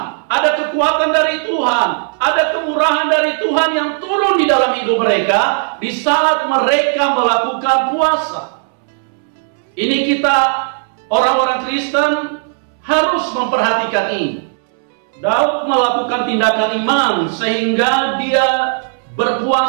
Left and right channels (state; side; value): silent; left; 69 dB below the other